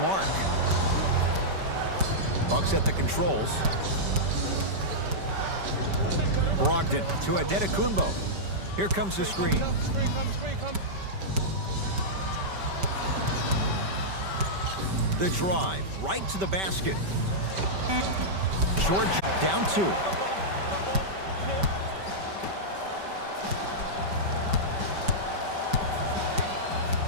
Bucks at the controls. Brogdon to Antetokounmpo. Here comes the screen. The drive right to the basket. Short down 2.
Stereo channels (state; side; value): late; left; 5.2 ms